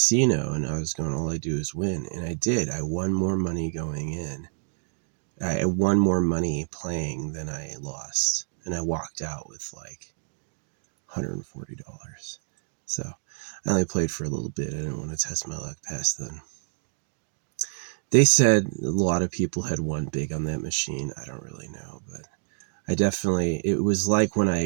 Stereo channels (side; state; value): left; silent; digital silence